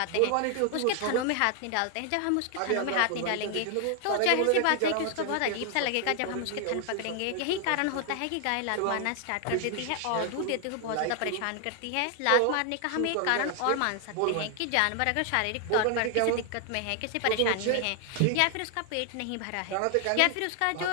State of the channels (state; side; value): different; both; correlation 0.00